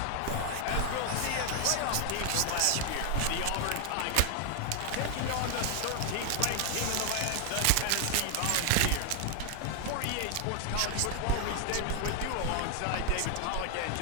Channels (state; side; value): different; both; correlation 0.00